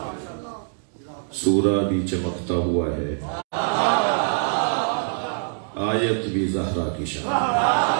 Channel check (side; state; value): left; silent; digital silence